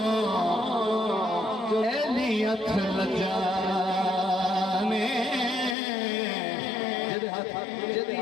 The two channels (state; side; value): drops out; right; at 5.8 s